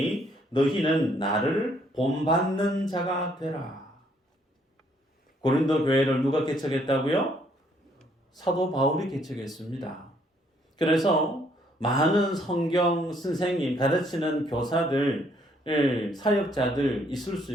너희는 나를 본받는 자가 되라. 고린도 교회를 누가 개척했다고요? 사도 바울이 개척했습니다. 그래서 많은 성경 선생님, 가르치는 교사들, 사역자들 있을 수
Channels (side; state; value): both; normal; correlation 0.67